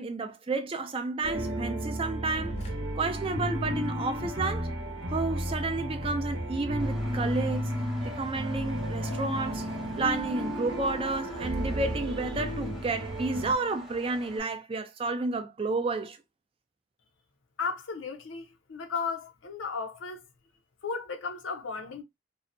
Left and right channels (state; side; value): normal; both; correlation 0.38